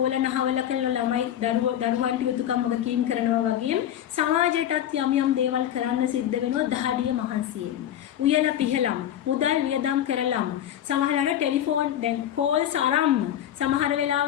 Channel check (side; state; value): right; quieter; 10.9 dB